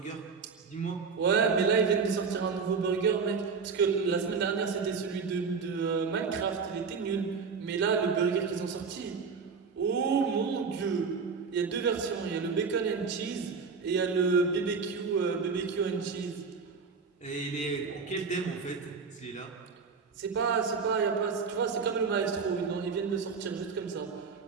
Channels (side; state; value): left; quieter; 5.3 dB